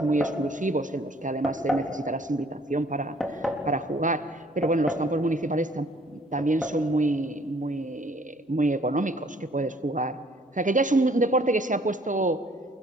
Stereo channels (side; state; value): both; normal; correlation 0.59